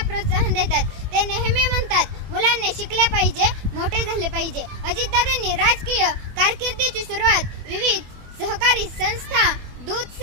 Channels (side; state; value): left; late; 24 ms